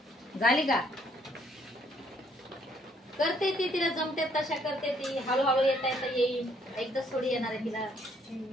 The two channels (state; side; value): normal; both; correlation 0.67